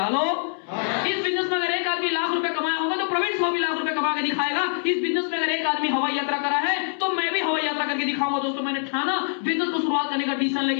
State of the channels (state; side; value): silent; right; 62 dB below the other